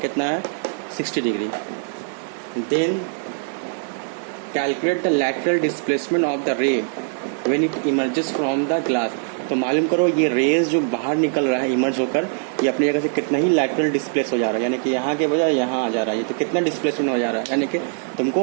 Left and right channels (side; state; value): left; silent; 64 dB below the other